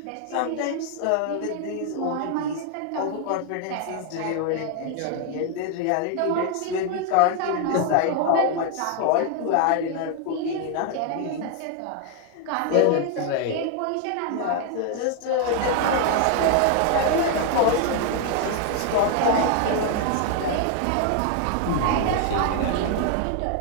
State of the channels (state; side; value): different; both; correlation 0.00